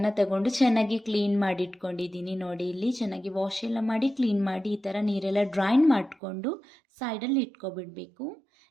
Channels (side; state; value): left; drops out; at 6.2 s